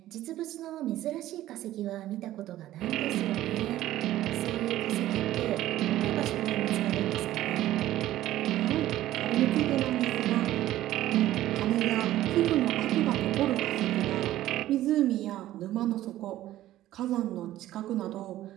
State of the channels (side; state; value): left; quieter; 14.2 dB